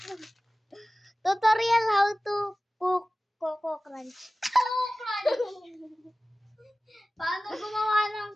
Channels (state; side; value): normal; both; correlation 0.97